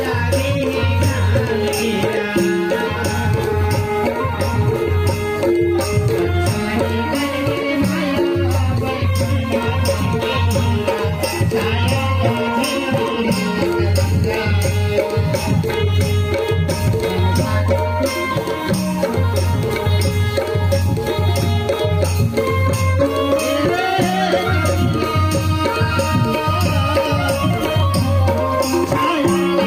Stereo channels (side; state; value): both; identical; correlation 1.00